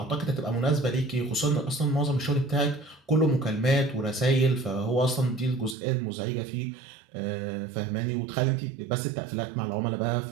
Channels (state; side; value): drops out; left; at 5.8 s